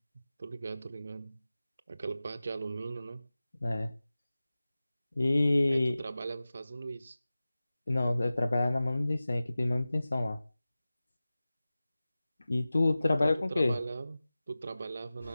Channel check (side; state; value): both; inverted; correlation -0.96